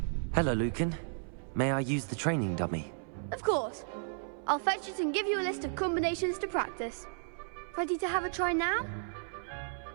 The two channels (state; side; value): silent; left; 55 dB below the other